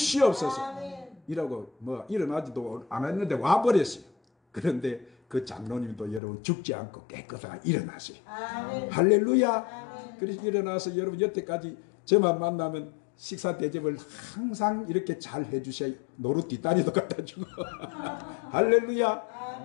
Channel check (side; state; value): right; drops out; at 6.2 s